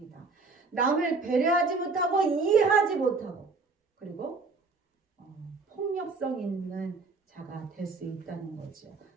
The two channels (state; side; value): quieter; left; 4.1 dB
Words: 남을 배려하지 못하고 이해하지 못하고 그리고 폭력성 있는 자가 될 수 있다는 거죠.